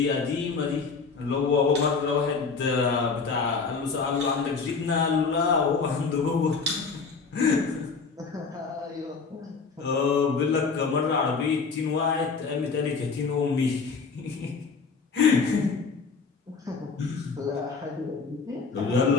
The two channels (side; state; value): right; quieter; 4.9 dB